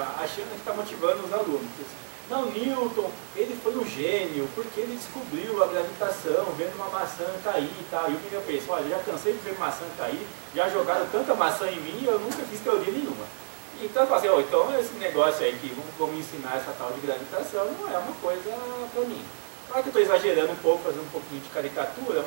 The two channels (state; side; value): silent; left; digital silence